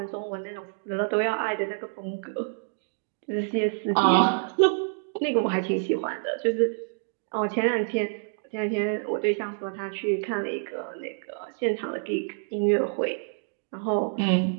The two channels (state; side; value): silent; left; digital silence